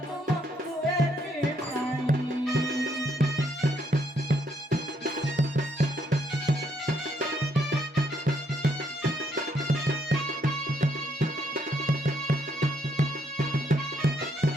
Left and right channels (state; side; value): normal; both; correlation 0.73